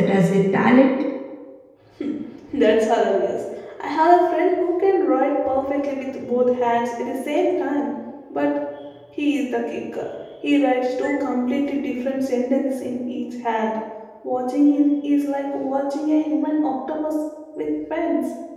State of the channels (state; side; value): identical; both; correlation 1.00